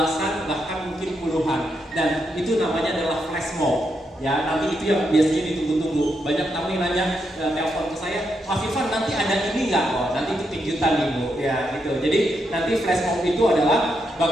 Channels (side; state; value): both; normal; correlation 0.81